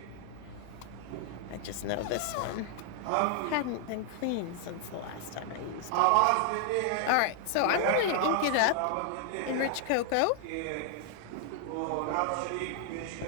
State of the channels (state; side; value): different; both; correlation 0.00